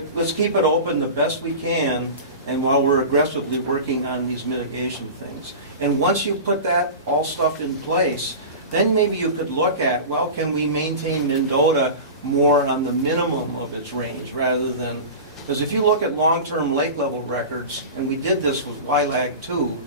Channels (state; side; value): inverted; both; correlation -0.31